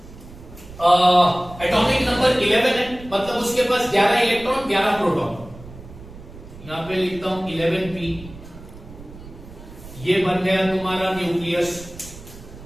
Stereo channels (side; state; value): right; noise; rumble, 17 dB below the sound